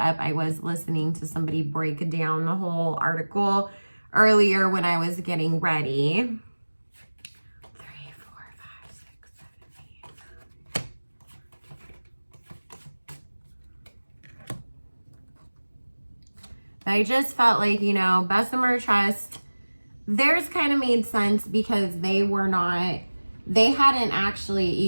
I was listening to somebody break down the whole article earlier when I was getting ready. 3, 4, 5, 6, 7, 8. I just felt like, you know, Bessemer Trust, theirs kind of made sense because they hadn't actually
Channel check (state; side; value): inverted; both; correlation -1.00